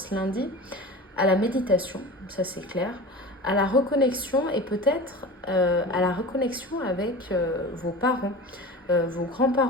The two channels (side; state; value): both; normal; correlation 0.34